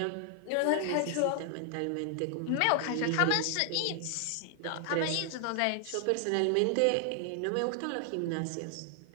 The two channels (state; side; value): different; both; correlation 0.00